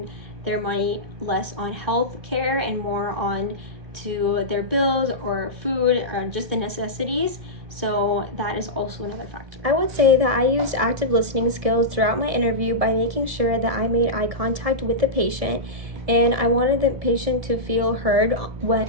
their money less on health care and more on to their bills or food or just the necessities. So that is also another factor. I would say that I used active listening skills throughout my interview by making sure that I made eye contact with the patient, and I wanted the patient to feel heard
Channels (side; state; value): left; late; 1.7 ms